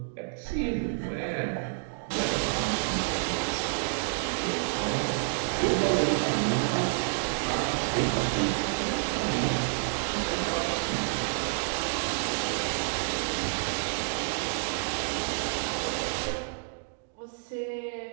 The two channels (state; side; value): silent; left; 58 dB below the other